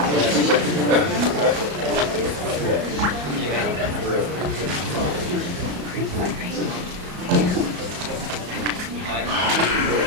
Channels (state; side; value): late; left; 34 ms